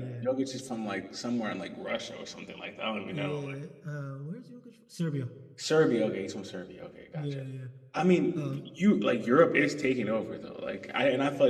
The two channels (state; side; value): identical; both; correlation 1.00